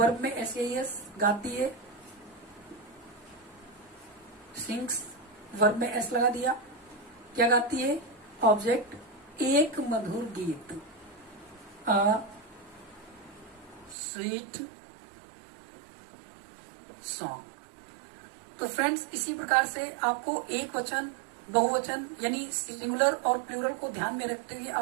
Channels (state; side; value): drops out; left; at 14.0 s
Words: में SAES, गाती है, सिंग्स, वर्ब में S लगा दिया, क्या गाती है, ऑब्जेक्ट, एक मधुर गीत, अ स्वीट सॉन्ग। तो फ्रेंड्स इसी प्रकार से आपको एक वचन, बहुवचन यानी सिंगुलर और प्लूरल को ध्यान में रखते हुए